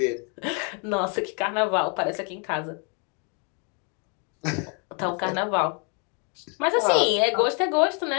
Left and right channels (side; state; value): right; quieter; 36.9 dB